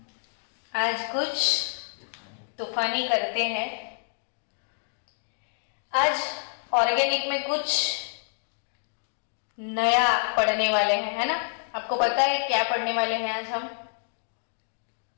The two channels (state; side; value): silent; right; digital silence